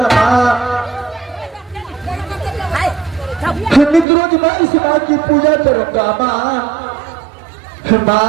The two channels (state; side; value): drops out; left; at 4.0 s